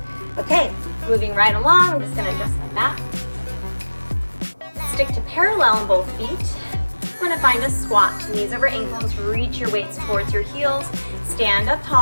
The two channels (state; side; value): inverted; both; correlation -1.00